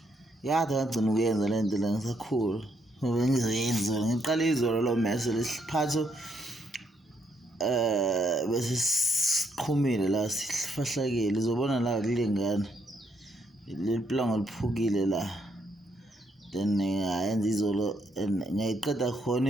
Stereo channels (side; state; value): both; normal; correlation 0.75